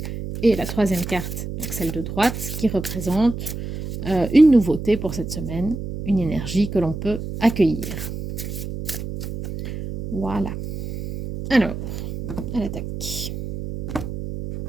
Et la troisième carte, donc celle de droite, qui représente une nouveauté pour cette semaine, une énergie que l'on peut accueillir. Voilà. Alors, à l'attaque.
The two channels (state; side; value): noise; right; hum, 7 dB below the sound